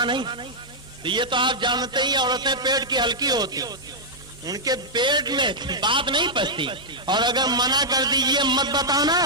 نہیں۔ یہ تو آپ جانتے ہی عورتیں پیٹ کی ہلکی ہوتی، ان کے پیٹ میں بات نہیں پستی، اور اگر منع کر دیجئے مت بتانا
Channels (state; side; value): normal; both; correlation -0.06